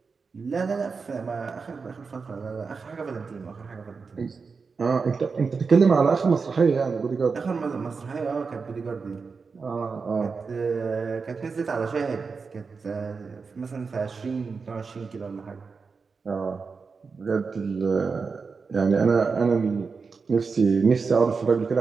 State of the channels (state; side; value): quieter; left; 4.9 dB